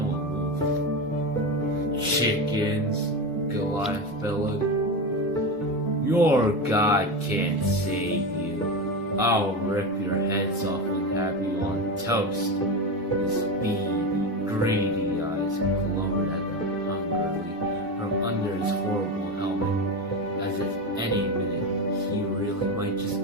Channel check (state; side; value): normal; both; correlation 0.18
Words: one moved. "Chickens," Goliath bellowed. "Your God can't save you. I'll rip your heads off and have you on toast." His beady, greedy eyes glowed at them hungrily from under his horrible helmet, as if any minute he really might just